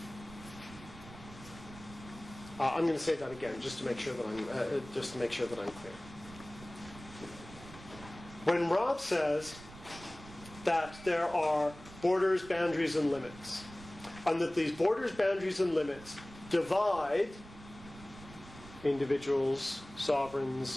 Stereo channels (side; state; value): right; noise; rumble, 17 dB below the sound